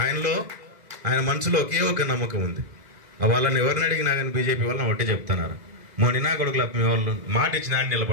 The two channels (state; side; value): late; left; 2.0 ms